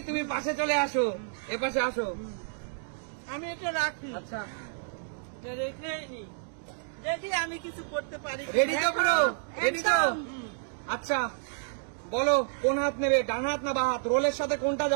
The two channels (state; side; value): silent; left; digital silence